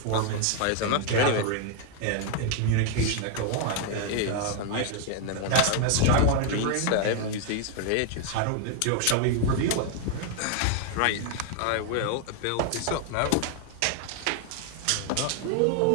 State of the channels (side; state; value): both; different; correlation 0.00